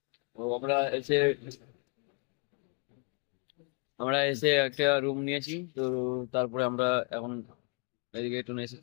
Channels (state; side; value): quieter; right; 34.1 dB